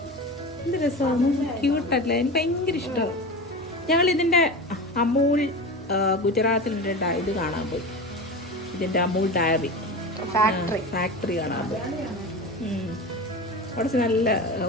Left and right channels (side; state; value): both; normal; correlation 0.28